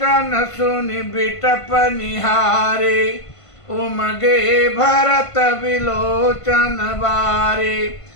सुनि बिटप निहारे, उमगे भरत विलोचन बारे।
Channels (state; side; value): late; right; 1.5 ms